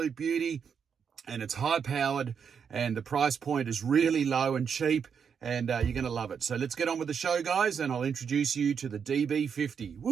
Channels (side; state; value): left; quieter; 6.9 dB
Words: beauty and it's high powered and the price point is really low and cheap and you're going to love it. So let's get on with the show guys and I'll introduce you to the DB50.